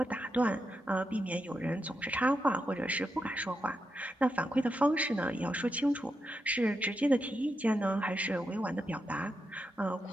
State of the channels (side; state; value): both; normal; correlation 0.86